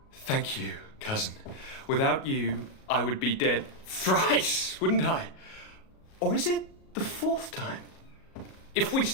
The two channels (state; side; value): late; right; 37 ms